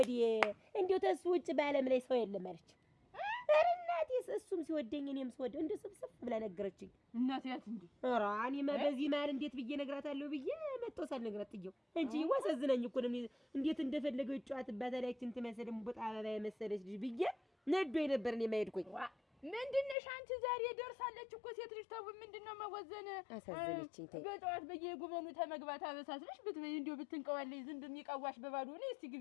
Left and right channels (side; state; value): right; drops out; at 20.0 s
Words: እንደው ተሱ ውጭ በዓለም ላይ ሰው የለም አለች። ኧረ እናቴስ እሱም ሲወደኝ እኔም ስወደው እንደው ስብስብ ብላ ነገረችኝ። እናቴ ያት እንዴ ኧረ እኔማ በዚህ መሀል እንዴት ብዬ እነግራታለሁ ብዬ መጥቶ ሳልነግራት ጥየው እንጂ ዋሰዝነኝ እኮ ነው። እንዴት እንደፈለገው ይጫወትባታል ያችን ትመስል እምቡጥ አበባ የመሰለች ልጅ ብዬ ነዶኝ ነበር እኔ የማይሄድኩኝ። ምንድነሽ አንቺ ዛሬ ደርሳለች እኮ ሴት ልጅ ተው ምንድነው መወዘን? አሳዘነችኝ። ተይ በጠዋት በየጉበኑ ተመግባት አበሳስልሽ ብትበይ እንደው ብትንቀዋለይ ዝም በሚቀዋሽ በባዶ ነው። እስቲ